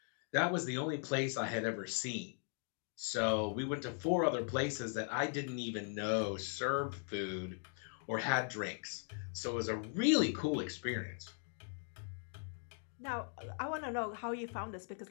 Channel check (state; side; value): silent; right; 52 dB below the other